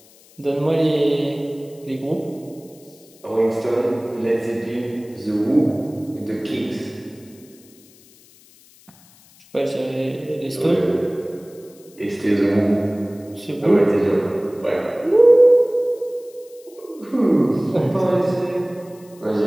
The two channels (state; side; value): noise; left; hiss, 27 dB below the sound